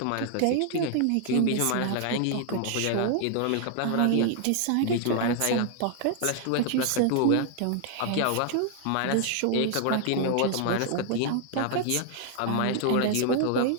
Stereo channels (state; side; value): different; both; correlation 0.00